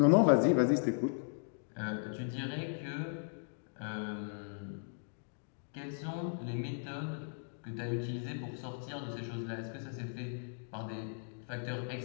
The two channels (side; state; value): right; silent; digital silence